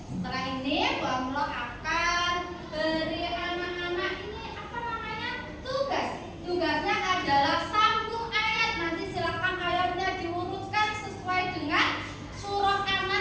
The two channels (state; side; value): identical; both; correlation 1.00